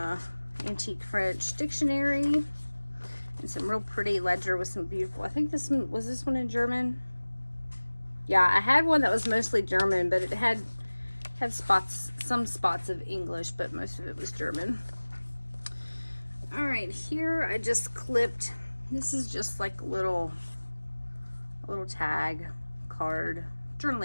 antique French dictionary, and some real pretty ledger with some beautiful, I think this one, was this one in German? Yeah, I had one that was mostly German, but it had some spots of English, but most of it was German. All right, here I just clipped, this is just like a little tag card,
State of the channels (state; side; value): inverted; both; correlation -1.00